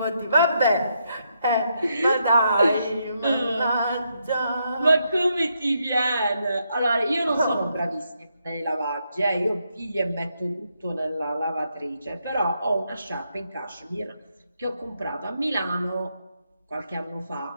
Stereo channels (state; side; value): inverted; both; correlation -0.79